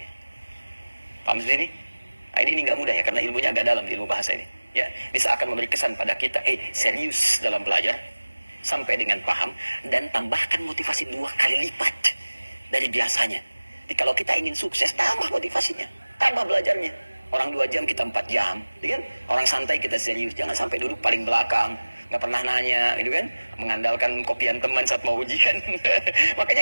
Paham sendiri? Nah, ini nggak mudah ya, karena ilmunya agak dalam di ilmu bahasa ini. Ya, bisa akan memberi kesan pada kita, serius dalam belajar sampai dengan paham, dan tambahkan motivasi 2 kali lipat dari biasanya. Jadi kalau kita ingin sukses, tambah motivasinya, tambah belajarnya. Orang 2 jam, kita 4 jam, gitu kan? Orang santai, kita serius, jangan sampai duduk paling belakang, nggak pernah nanya, gitu kan? Mengandalkan kopian teman saat mau ujian.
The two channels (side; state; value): both; inverted; correlation -1.00